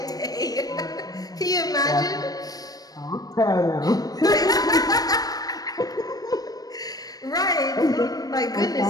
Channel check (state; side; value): late; right; 0.18 ms